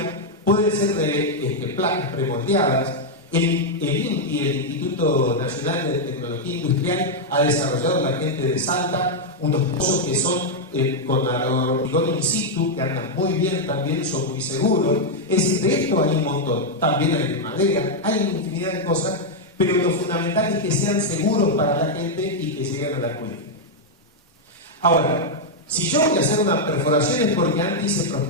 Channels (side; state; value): both; normal; correlation -0.01